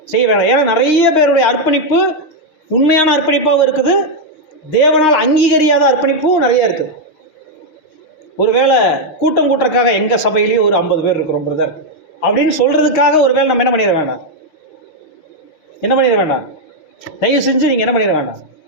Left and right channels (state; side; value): late; right; 6.5 ms